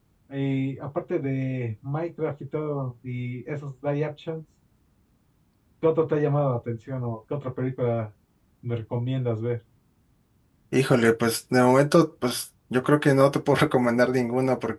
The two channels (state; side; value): identical; both; correlation 1.00